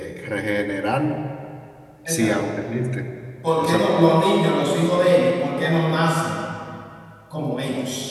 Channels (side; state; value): both; identical; correlation 1.00